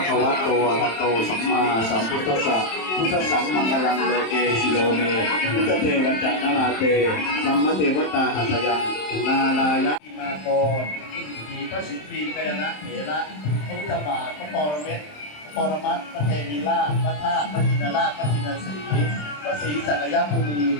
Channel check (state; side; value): late; right; 27 ms